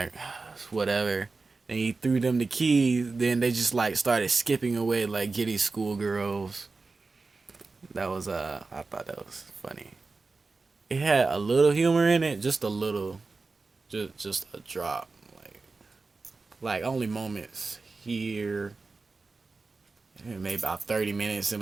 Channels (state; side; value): quieter; left; 3.9 dB